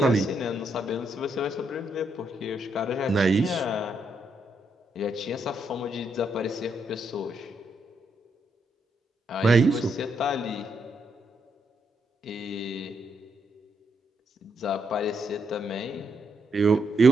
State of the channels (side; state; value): both; normal; correlation 0.78